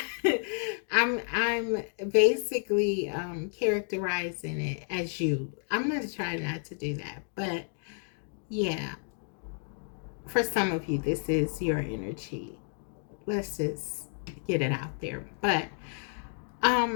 I'm basically characterizing it as you. I'm gonna try not to do that, but yeah, for some of you this is your energy. Let's just get it out there. But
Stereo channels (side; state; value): right; silent; 57 dB below the other